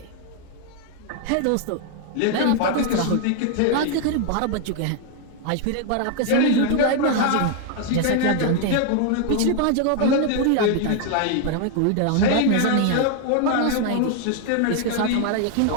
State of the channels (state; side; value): different; both; correlation 0.00